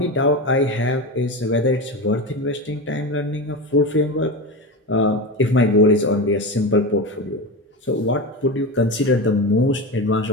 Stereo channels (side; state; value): both; normal; correlation 0.22